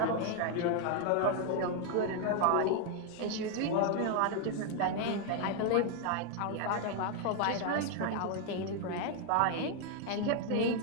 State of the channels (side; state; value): both; different; correlation 0.00